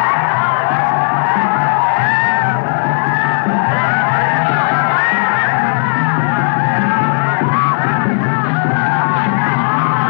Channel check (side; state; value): right; silent; 71 dB below the other